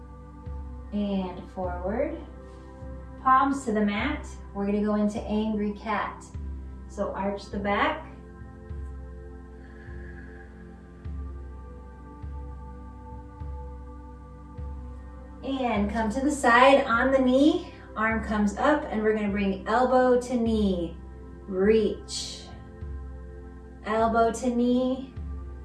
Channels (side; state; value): both; identical; correlation 1.00